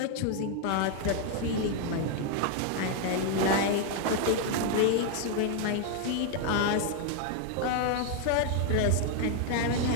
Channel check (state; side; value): different; both; correlation 0.00